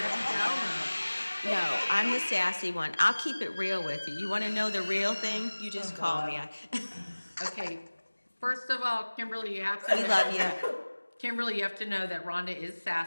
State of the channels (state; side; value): inverted; both; correlation -1.00